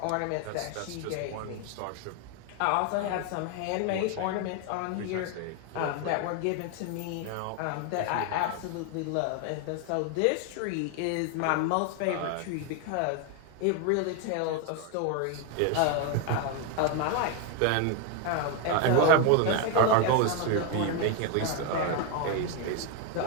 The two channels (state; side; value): different; both; correlation 0.01